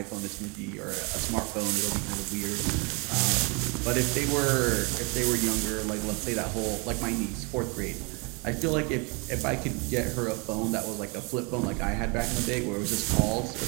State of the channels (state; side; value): quieter; left; 31.6 dB